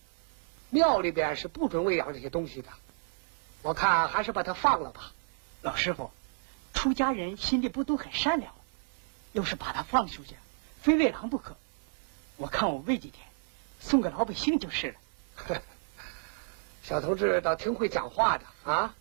庙里边是不准喂养这些东西的。我看还是把它放了吧。老师傅，出家人心里不都很善良吗？要是把它放出去，非喂狼不可。我看我喂几天，送给老百姓就是了。小同志倒挺会讲话的啊！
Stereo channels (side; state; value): left; silent; 57 dB below the other